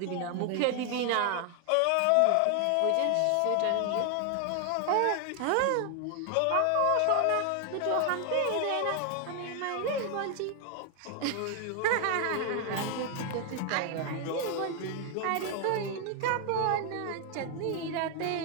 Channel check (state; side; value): different; both; correlation 0.00